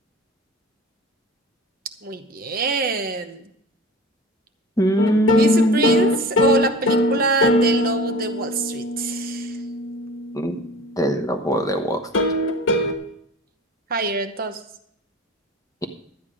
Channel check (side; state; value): both; normal; correlation 0.38